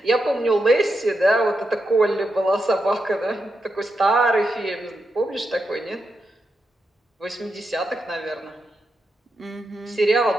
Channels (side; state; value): both; normal; correlation 0.85